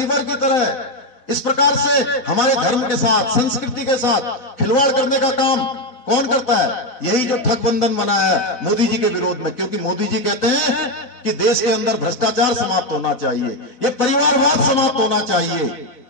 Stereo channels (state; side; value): late; right; 4.0 ms